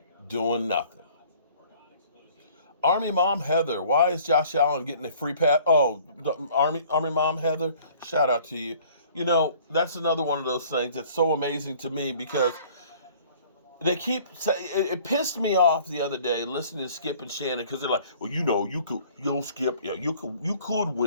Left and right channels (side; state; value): both; inverted; correlation -0.53